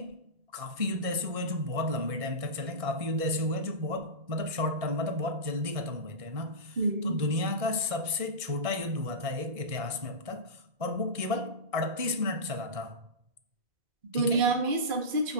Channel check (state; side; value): late; left; 1.6 ms